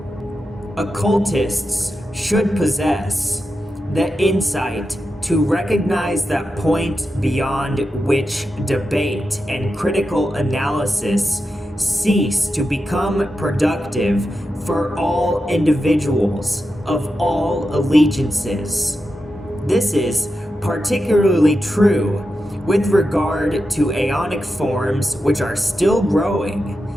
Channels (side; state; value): both; normal; correlation 0.90